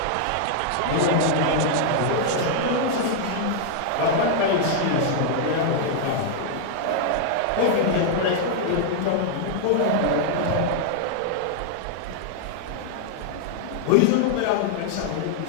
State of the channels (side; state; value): both; different; correlation -0.01